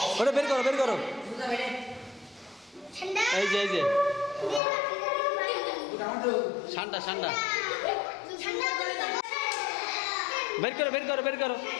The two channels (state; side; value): drops out; right; at 4.6 s